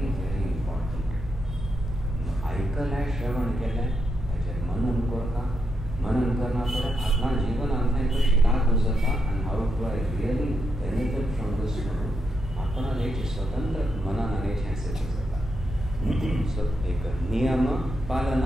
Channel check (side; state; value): both; normal; correlation 0.83